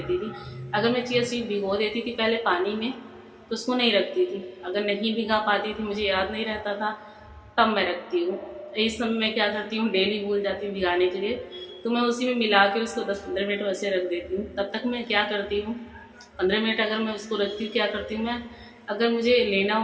थी। अगर मैं चिया सीड भिगो देती थी पहले पानी में, तो उसको नहीं रखती थी। अगर नहीं भिगा पाती थी, मुझे याद नहीं रहता था, तब मैं रखती हूँ। इस समय मैं क्या करती हूँ, डेली भूल जाती हूँ भिगाने के लिए, तो मैं उसी में मिला के उसको 10-15 मिनट वैसे रख देती हूँ। तब तक मैं क्या करती हूँ, 15 मिनट अगर मैं उसको रखती हूँ, क्या करती हूँ मैं, अगर मुझे लेना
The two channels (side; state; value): both; identical; correlation 1.00